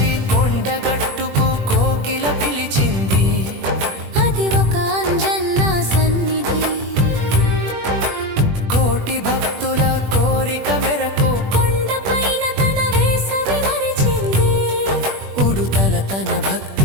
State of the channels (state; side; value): late; left; 21 ms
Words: కొండగట్టుకు కోకిల పిలిచింది, అది ఒక అంజన్న సన్నిధి. కోటి భక్తుల కోరిక మెరకు కొండపైన తన వేసవి మరిచింది, ఉడుతల తన